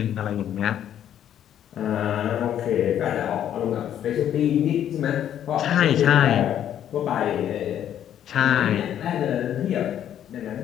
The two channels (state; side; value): quieter; right; 10.4 dB